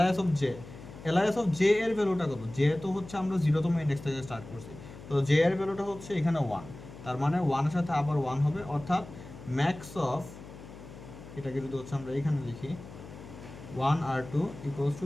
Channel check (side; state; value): left; noise; hum, 16 dB below the sound